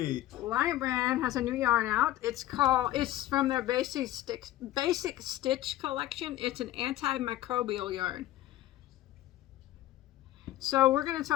Lion Brand has a new yarn out. It's from their Basic Stitch collection. It's an antimicrobial yarn. So we're going to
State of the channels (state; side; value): quieter; right; 14.6 dB